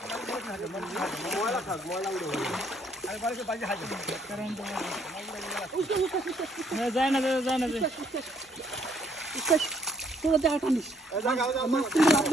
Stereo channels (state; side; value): normal; both; correlation 0.66